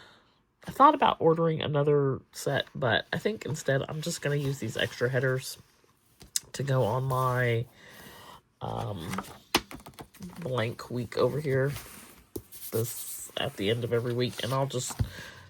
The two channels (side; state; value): both; identical; correlation 1.00